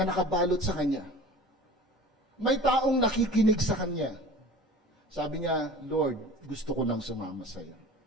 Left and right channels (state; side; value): normal; both; correlation 0.40